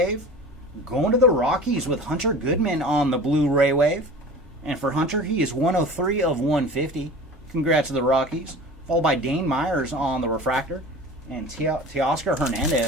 Going to the Rockies with Hunter Goodman on the blue Ray Wave. And for Hunter, he is 103 of 150. Congrats to the Rockies. Followed by Dane Myers on the refractor. And Teoscar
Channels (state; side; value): normal; both; correlation 0.38